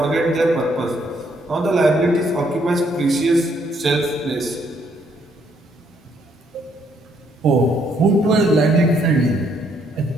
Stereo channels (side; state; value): both; normal; correlation 0.70